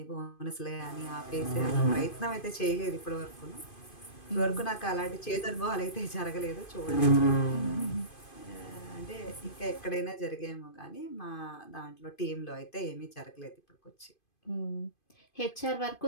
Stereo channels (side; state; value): right; late; 2.5 ms